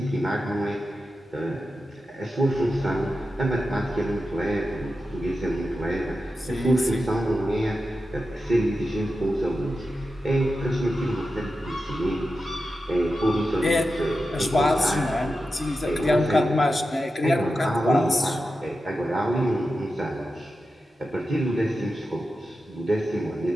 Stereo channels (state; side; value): normal; both; correlation 0.91